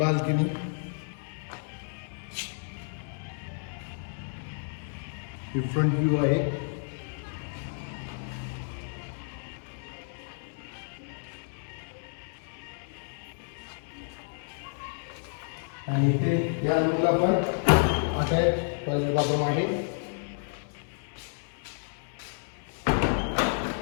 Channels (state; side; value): silent; right; 57 dB below the other